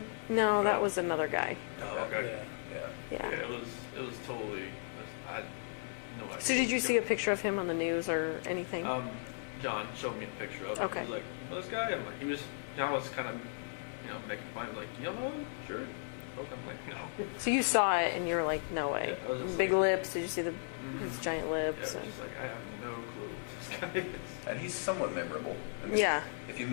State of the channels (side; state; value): right; silent; 54 dB below the other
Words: No, that was another guy. Oh, okay. Yeah. Yeah. Yeah, it was totally. I had no idea. So did you see a picture of him on the news or anything? John showed me a picture of him. Okay. He was like, "Well, this guy," I'm like, I was kind of, making fun. Like, "You know him? Sure." Okay. I'm like, "No." So you saw it and you were like, no way. Yeah, I was just Big like- lips. Did you see his giant Yeah, lips? it was and- just like I have no clue who this guy is. And he's somewhat memorable. I mean, Yeah. If you